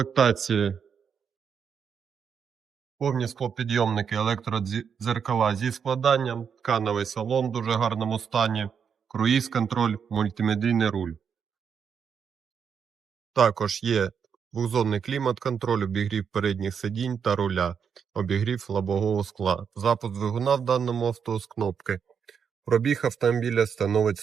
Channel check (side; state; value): left; quieter; 7.0 dB